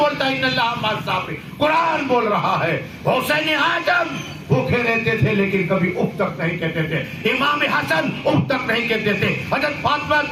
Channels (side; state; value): both; identical; correlation 1.00